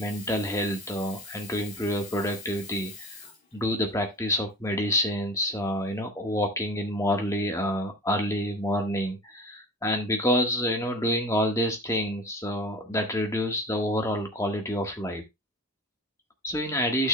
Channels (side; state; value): both; normal; correlation 0.37